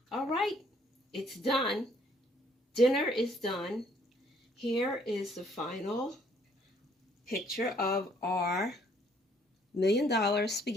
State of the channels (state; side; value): normal; both; correlation 0.64